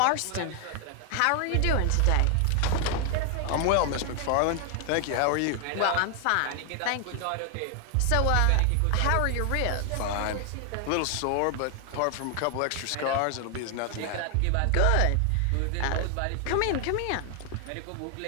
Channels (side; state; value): both; different; correlation 0.00